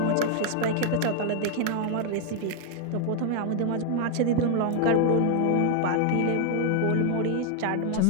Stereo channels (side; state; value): both; different; correlation 0.00